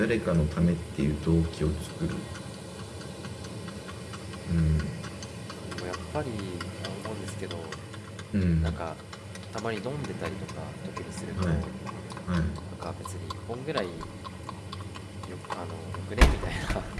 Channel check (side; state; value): both; identical; correlation 1.00